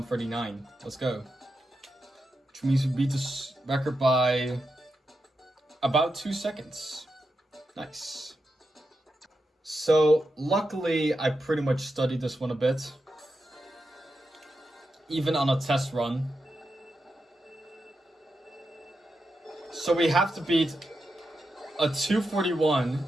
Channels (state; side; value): normal; both; correlation 0.87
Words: Let's go. Which means we beat this record by about 2 seconds. Nice. So, luckily, I pretty much studied this one a bit. Even on a test run. So we have to beat a 241